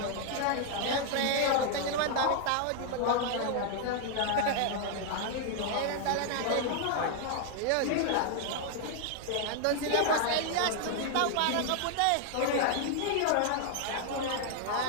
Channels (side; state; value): both; different; correlation 0.00